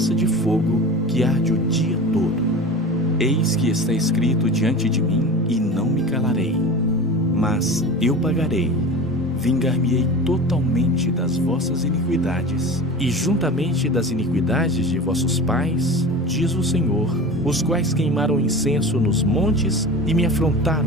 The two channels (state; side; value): normal; both; correlation 0.33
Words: de fogo que arde o dia todo. Eis que está escrito diante de mim e não me calarei. Mas eu pagarei, vingar-me-ei totalmente das vossas iniquidades, e juntamente das iniquidades de vossos pais, diz o Senhor, os quais queimaram incenso nos montes e me